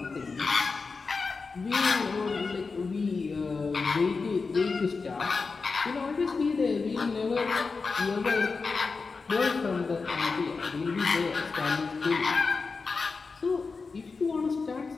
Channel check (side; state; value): right; quieter; 4.5 dB